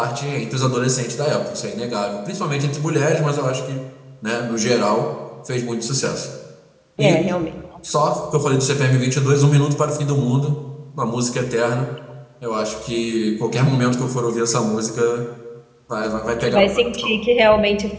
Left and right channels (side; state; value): both; identical; correlation 1.00